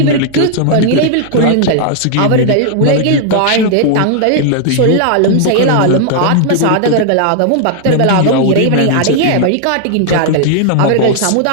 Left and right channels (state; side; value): different; both; correlation -0.01